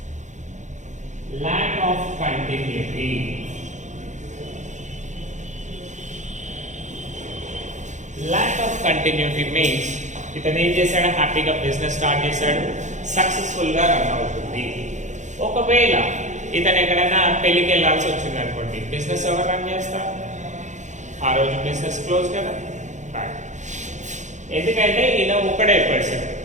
lack of continuity. Lack of continuity means ఇతను ఏం చేశాడు, హ్యాపీగా బిజినెస్ స్టార్ట్ చేశాడు, సక్సెస్ఫుల్ గా రన్ అవుతుంది. ఒకవేళ ఇతను ఎక్కడైనా పెళ్లికి వెళ్ళాల్సి వచ్చింది అనుకోండి, బిజినెస్ ఎవరు రన్ చేస్తారు? ఆ రోజు బిజినెస్ క్లోజ్ కదా. ఎందుకంటే ఈయన ఒకడే పర్సన్.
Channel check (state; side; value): late; left; 0.35 ms